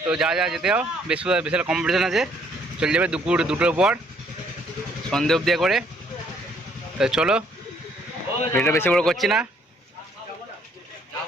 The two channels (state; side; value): normal; both; correlation 0.65